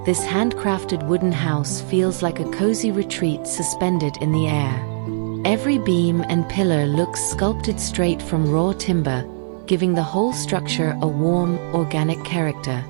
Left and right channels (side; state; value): left; silent; digital silence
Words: this handcrafted wooden house feels like a cozy retreat suspended in the air. Every beam and pillar looks sculpted straight from raw timber, giving the whole structure a warm, organic character.